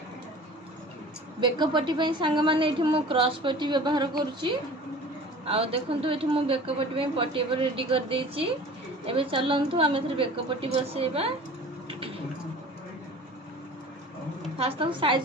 बेकपट्टी सांग मैंने क्रॉस पट्टी व्यवहार करुच्ची आ देखो ये मुझे बेकपट्टी पट्टी रेडी कर देची एबे चलंतु आम बेकपट्टी बसेबा फास्ट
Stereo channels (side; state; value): both; normal; correlation 0.42